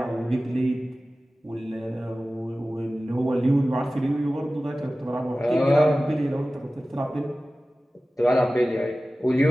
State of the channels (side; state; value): both; normal; correlation 0.96